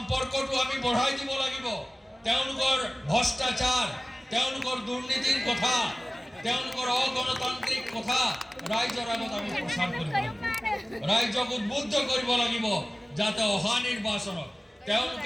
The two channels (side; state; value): both; normal; correlation 0.97